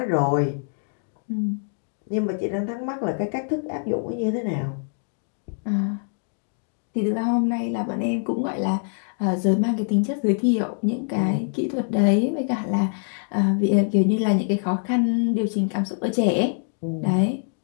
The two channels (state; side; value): silent; right; 62 dB below the other